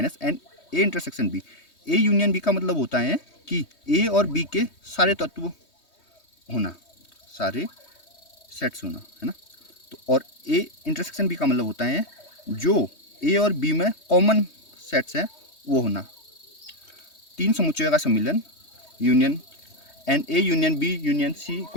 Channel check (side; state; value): right; late; 3.2 ms